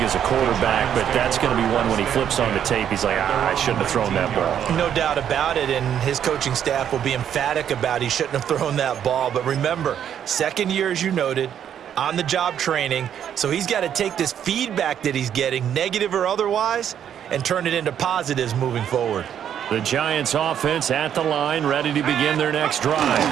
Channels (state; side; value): quieter; left; 9.3 dB